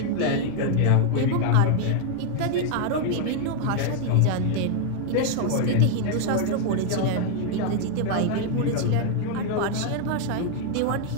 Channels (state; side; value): different; both; correlation 0.00